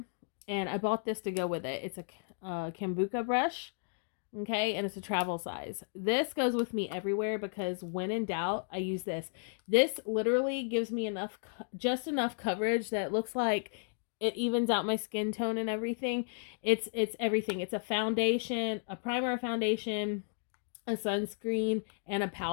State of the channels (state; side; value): silent; right; digital silence